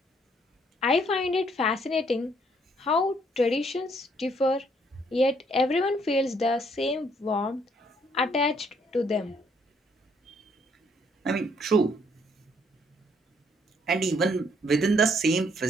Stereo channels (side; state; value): both; normal; correlation 0.67